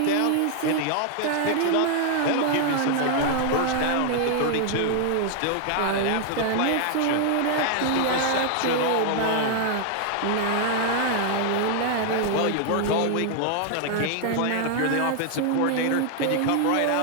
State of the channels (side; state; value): both; different; correlation 0.00